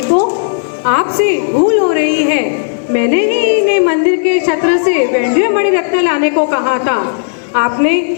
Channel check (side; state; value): right; silent; digital silence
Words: आपसे भूल हो रही है। मैंने ही इन्हें मंदिर के छत्र से वैंड्य मणि रत्न लाने को कहा था। आपने